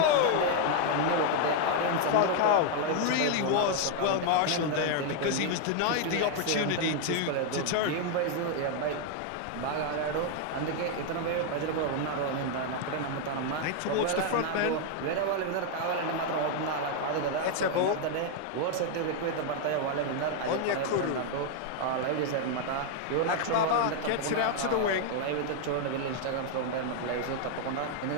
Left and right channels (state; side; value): different; both; correlation 0.00